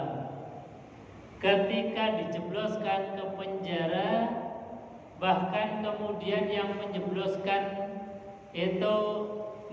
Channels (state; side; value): identical; both; correlation 1.00